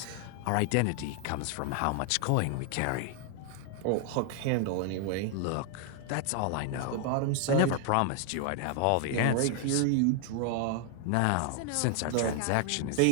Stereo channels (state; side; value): different; both; correlation 0.00